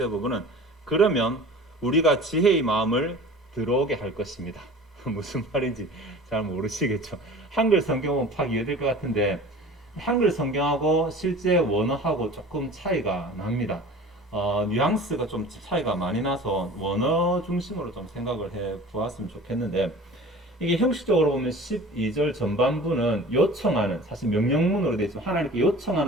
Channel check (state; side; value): normal; both; correlation 0.41